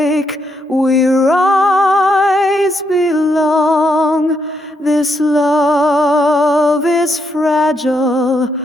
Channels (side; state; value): both; normal; correlation 0.78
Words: we rise, belong. This love is fragile,